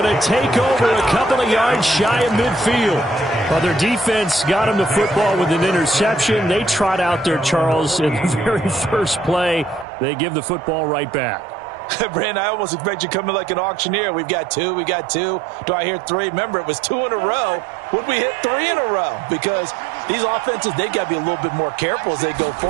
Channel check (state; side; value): drops out; left; at 9.9 s